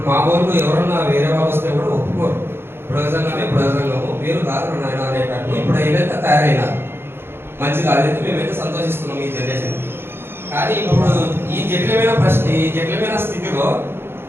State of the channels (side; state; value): left; late; 0.11 ms